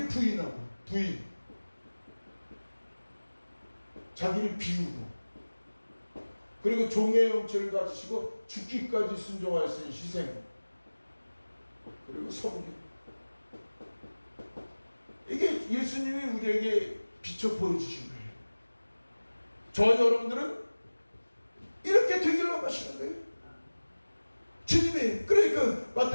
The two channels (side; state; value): both; inverted; correlation -1.00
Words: 부인하고 자기를 비우고, 그리고 종의 형체를 가지시고 죽기까지 순종하였으니 희생, 그리고 섬김. 이게 예수님이 우리에게 비춰 보여주신 거예요. 저와 여러분들은 이렇게 되기를 원하시는 거예요. 주님이. 그러니까